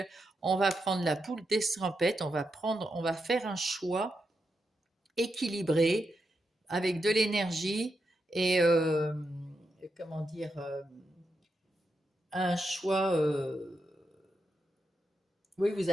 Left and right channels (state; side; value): normal; both; correlation 0.85